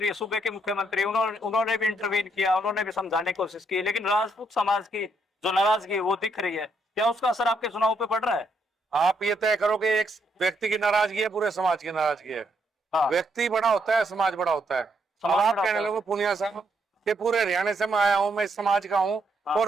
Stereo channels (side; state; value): both; normal; correlation 0.75